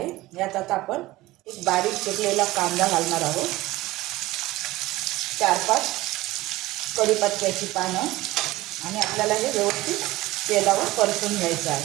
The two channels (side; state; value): left; quieter; 18.4 dB